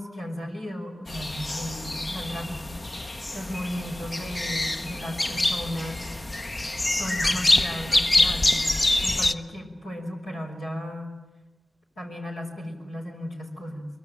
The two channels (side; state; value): both; normal; correlation 0.97